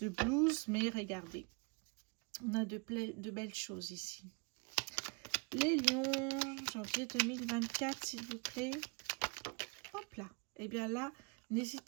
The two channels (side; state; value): left; quieter; 32.1 dB